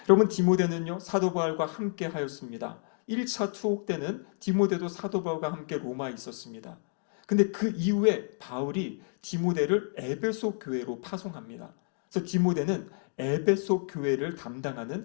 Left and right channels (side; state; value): right; silent; 58 dB below the other